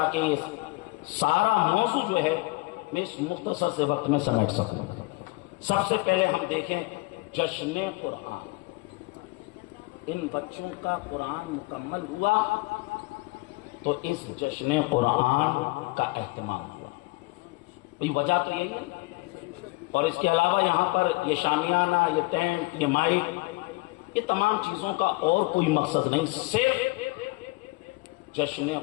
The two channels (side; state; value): right; quieter; 24.4 dB